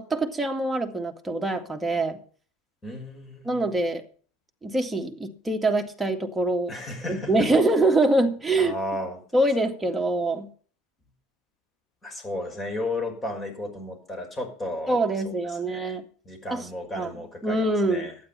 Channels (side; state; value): both; normal; correlation 0.71